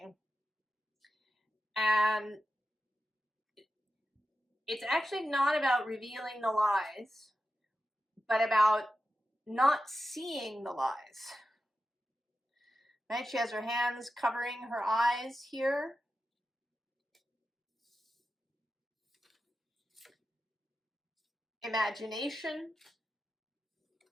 And it's actually not about revealing the lies, but about not seeing the lies. Right? She has her hands covering her eyes here. Imagination.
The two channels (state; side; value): normal; both; correlation 0.91